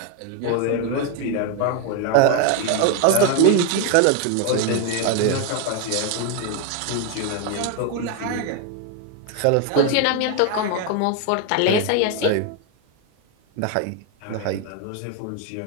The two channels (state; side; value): different; both; correlation 0.01